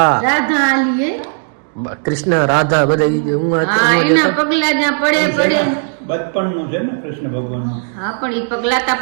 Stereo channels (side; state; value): left; silent; 59 dB below the other